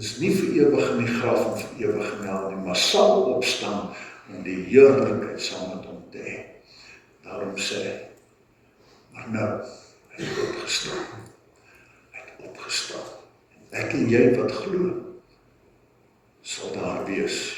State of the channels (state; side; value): identical; both; correlation 1.00